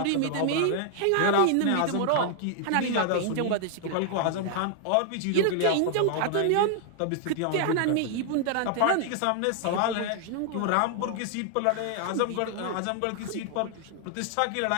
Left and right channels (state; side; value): different; both; correlation 0.00